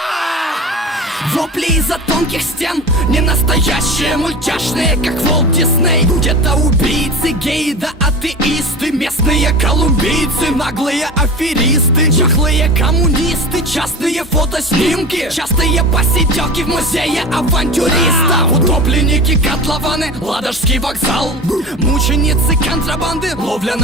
Вопли из-за тонких стен, не настоящие, мультяшные, как Волт Дисней. Где-то убийцы, геи да атеисты, местные колумбийцы, наглые аферисты, чахлые коммунисты, частные фотоснимки, частые посиделки в музее авантюристов. Утопленники, котлованы, Ладожский вокзал, мученицы контрабанды, ловля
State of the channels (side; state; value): both; normal; correlation 0.32